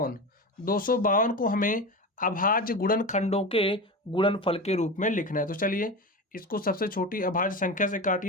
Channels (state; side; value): normal; both; correlation 0.25